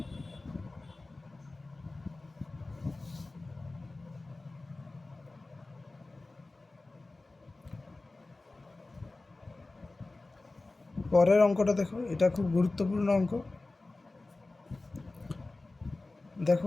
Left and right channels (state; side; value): quieter; right; 3.2 dB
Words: পরের অঙ্কটা দেখো, এটা খুব গুরুত্বপূর্ণ অঙ্ক।